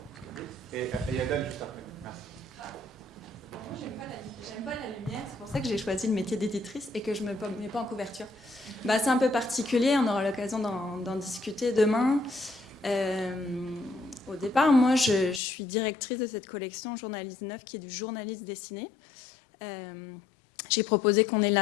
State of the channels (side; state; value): right; drops out; at 15.4 s